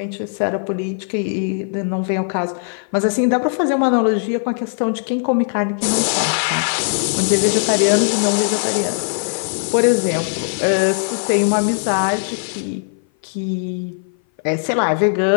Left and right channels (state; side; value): silent; right; 58 dB below the other